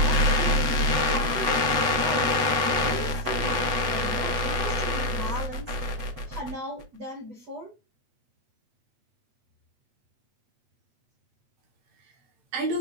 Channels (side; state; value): left; late; 8.0 ms